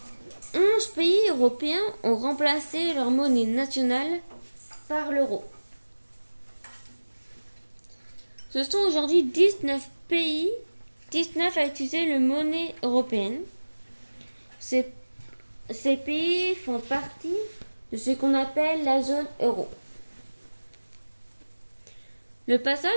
11 pays européens ont remplacé leur monnaie nationale par l'euro. Ce sont aujourd'hui 19 à utiliser la monnaie européenne. Ces pays font partie de ce qu'on appelle la zone euro. Le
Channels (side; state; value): both; inverted; correlation -1.00